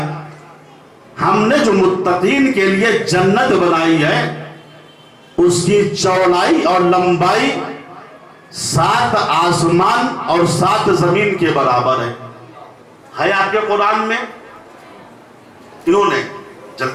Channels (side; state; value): both; identical; correlation 1.00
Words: ہم نے جو متقین کے لیے جنت بنائی ہے اس کی چوڑائی اور لمبائی 7 آسمان اور 7 زمین کے برابر ہے آپ کے قرآن میں؟ انہوں نے